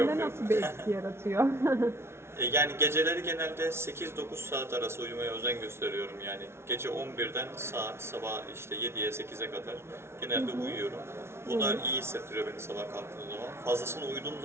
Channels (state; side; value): late; left; 0.12 ms